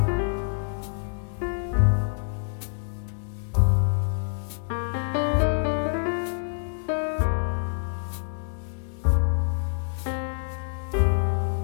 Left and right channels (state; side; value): silent; right; 58 dB below the other